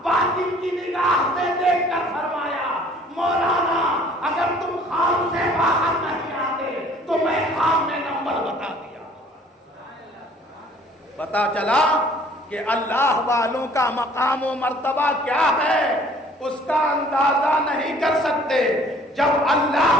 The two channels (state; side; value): normal; both; correlation 0.55